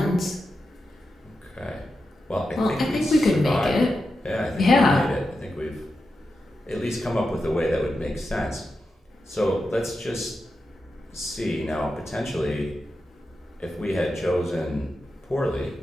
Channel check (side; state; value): both; normal; correlation 0.89